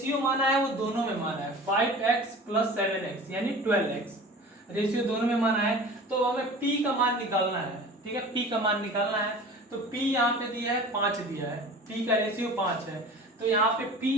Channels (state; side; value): normal; both; correlation 0.40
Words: माना है वो दोनों में माना है, 5x + 7x यानी 12x, रेशियो दोनों में माना है। तो हमें p का मान निकालना है, ठीक है, p का मान निकालना है। तो p यहाँ पे दिया है 5 दिया है, p का रेशियो 5 है, तो यहाँ पे